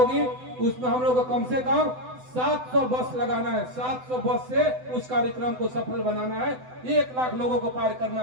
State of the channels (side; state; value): left; late; 7.9 ms